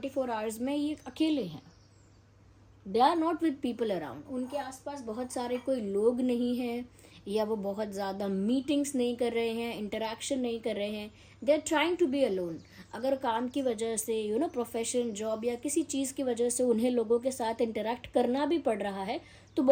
आवर्स में ये अकेले हैं. They are not with people around. उनके आसपास बहुत सारे कोई लोग नहीं हैं, या वो बहुत ज़्यादा मीटिंग्स नहीं कर रहे हैं, इंटरेक्शन नहीं कर रहे हैं. They are trying to be alone. अगर काम की वजह से प्रोफेशन, जॉब या किसी चीज़ की वजह से उन्हें लोगों के साथ इंटरेक्ट करना भी पड़ रहा है तो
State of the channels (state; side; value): identical; both; correlation 1.00